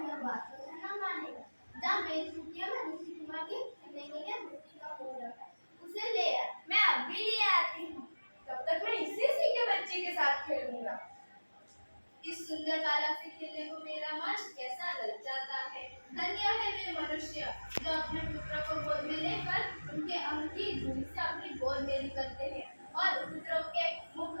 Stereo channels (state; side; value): inverted; both; correlation -1.00